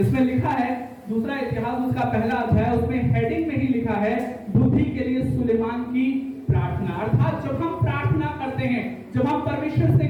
लिखा है, दूसरा इतिहास उसका पहला अध्याय, उसमें हेडिंग में ही लिखा है, बुद्धि के लिए सुलेमान की प्रार्थना। अर्थात जब हम प्रार्थना करते हैं, जब हम परमेश्वर से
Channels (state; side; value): identical; both; correlation 1.00